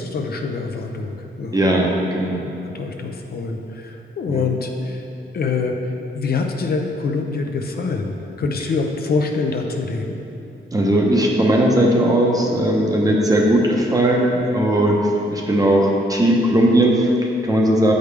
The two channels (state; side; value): normal; both; correlation 0.66